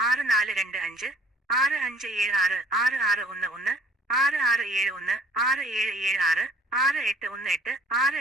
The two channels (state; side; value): normal; both; correlation 0.54